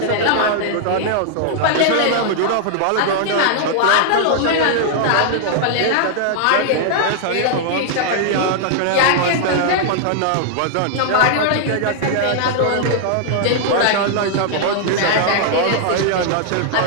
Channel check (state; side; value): different; both; correlation -0.01